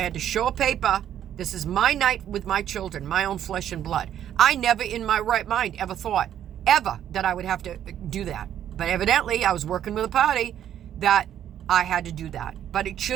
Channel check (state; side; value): quieter; left; 10.5 dB